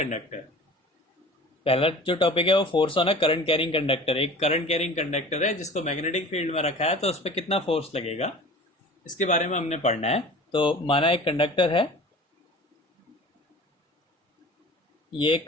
पहला जो टॉपिक है वो force on a current carrying conductor. एक करंट कैरिंग कंडक्टर है जिसको मैग्नेटिक फील्ड में रखा है, तो उस पर कितना फोर्स लगेगा इसके बारे में हमने पढ़ना है। तो माना एक कंडक्टर है, ये एक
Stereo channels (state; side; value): normal; both; correlation 0.41